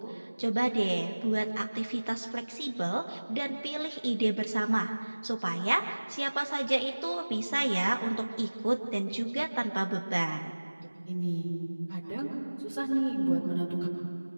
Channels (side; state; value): both; inverted; correlation -1.00